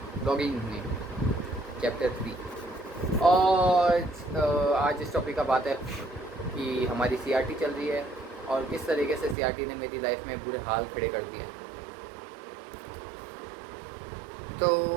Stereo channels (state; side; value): drops out; left; at 9.3 s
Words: ब्लॉगिंग में चैप्टर 3। और आज इस टॉपिक का बात है कि हमारी सीआरटी चल रही है और किस तरीके से सीआरटी ने मेरी लाइफ में बुरे हाल खड़े कर दिए हैं। तो